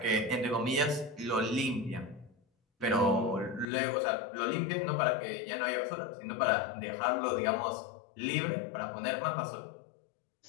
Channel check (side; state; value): right; drops out; at 3.7 s